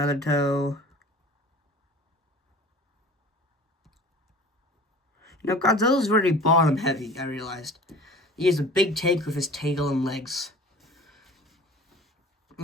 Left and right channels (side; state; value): both; normal; correlation 0.43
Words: toe. You know, Godzilla's very bottom heavy, I realized. He has a big tank with his tail and legs.